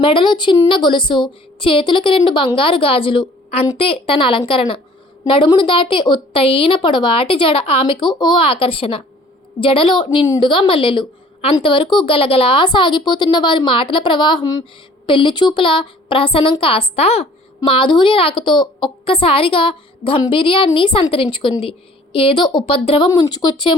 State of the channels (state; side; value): normal; both; correlation 0.53